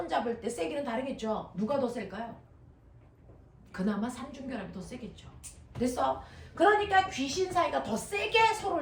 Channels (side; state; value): both; identical; correlation 1.00